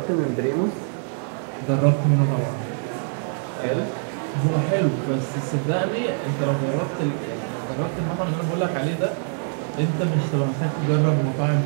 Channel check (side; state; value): left; silent; 59 dB below the other